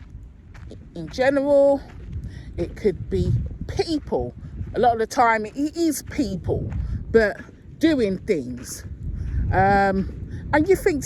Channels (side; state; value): both; identical; correlation 1.00